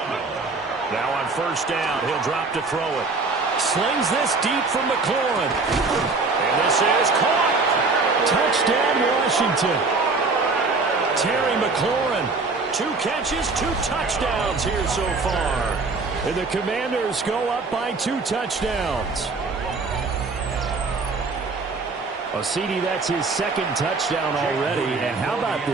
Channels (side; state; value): left; quieter; 3.9 dB